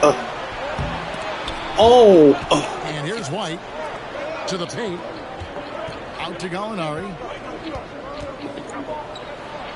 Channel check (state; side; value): identical; both; correlation 1.00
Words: And here's White. To the paint. Out to Gallinari.